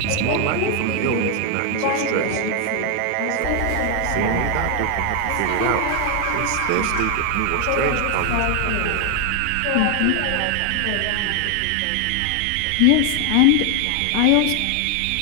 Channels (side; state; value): both; different; correlation 0.00